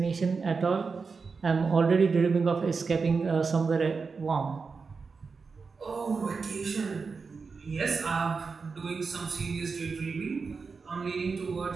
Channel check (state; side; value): quieter; left; 4.9 dB